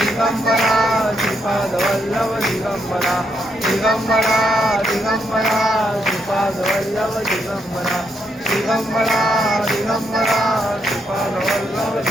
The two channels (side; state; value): both; normal; correlation 0.78